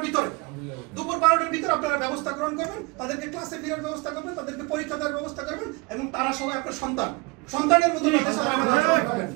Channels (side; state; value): left; quieter; 26.1 dB